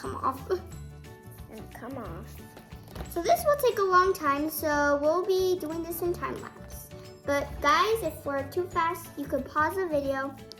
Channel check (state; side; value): identical; both; correlation 1.00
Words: off. And come off. So this will take a long time, so we'll be doing this in time lapse. But guys, if we're too fast, you could pause the video